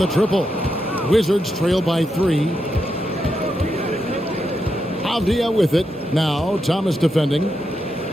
triple. Wizards trail by 3. Avdia with it. Now Thomas defending.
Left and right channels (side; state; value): both; normal; correlation 0.84